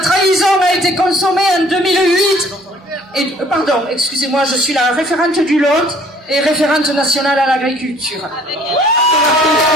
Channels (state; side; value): normal; both; correlation 0.57